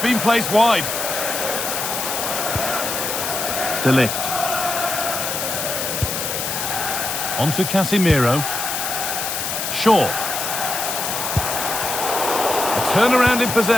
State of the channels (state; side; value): noise; left; hiss, 3 dB below the sound